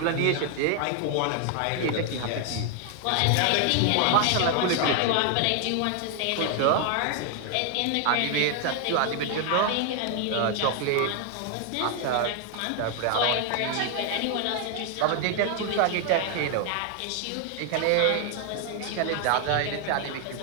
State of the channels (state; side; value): different; both; correlation 0.00